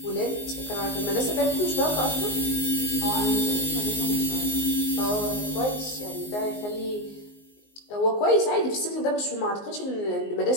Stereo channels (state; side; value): late; right; 19 ms